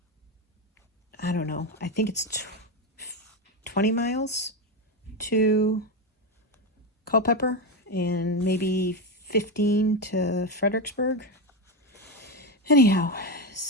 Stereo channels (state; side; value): normal; both; correlation 0.12